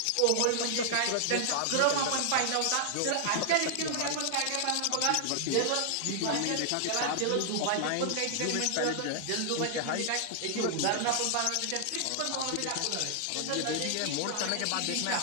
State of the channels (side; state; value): both; different; correlation 0.00